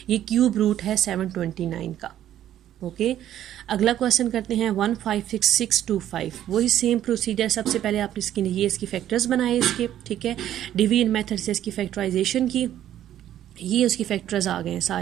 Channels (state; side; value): quieter; left; 11.7 dB